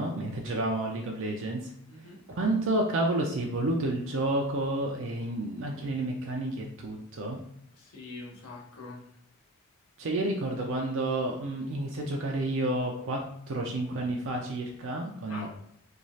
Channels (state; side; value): normal; both; correlation 0.32